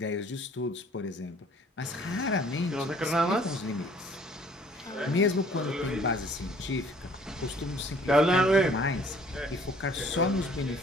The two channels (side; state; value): both; normal; correlation 0.56